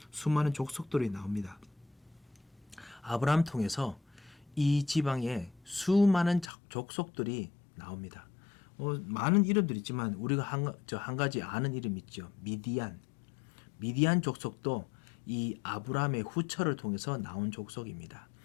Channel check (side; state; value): right; drops out; at 6.5 s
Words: 수많은 족속들이 나옵니다. 아브라함 통해서 이 지방에 수많은 족속들이 나옵니다. 많은 이름들이 있지만 우리가 한 가지 아는 이름 있죠. 미디안 족속도 이 아브라함의 후처를 통해서 나온 족속입니다.